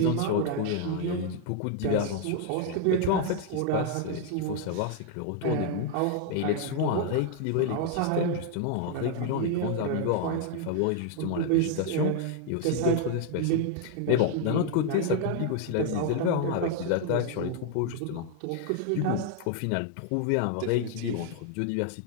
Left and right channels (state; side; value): different; both; correlation 0.00